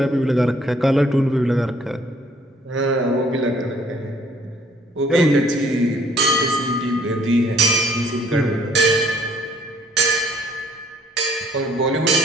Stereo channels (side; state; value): both; normal; correlation 0.61